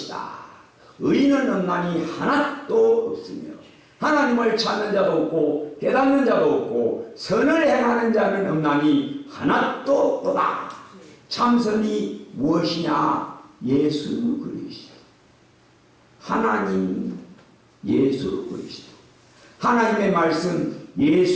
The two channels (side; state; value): both; identical; correlation 1.00